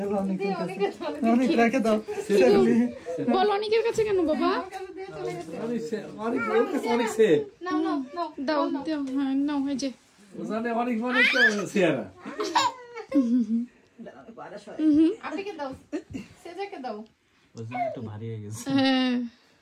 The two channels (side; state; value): both; identical; correlation 1.00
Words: অনেক, অনেক রেখে দাও। বল অনেকের কাছে কেন বাবা? অনেক অনেক সে নাও নাও নাও দাও দাও, হ্যাঁ নাও, এই যে ওখানে অনেক অনেক সেরা। আপনাকে দাও, সেজাকে দাও। ওজন একটু ভারী হয়ে গেছে। হ্যাঁ।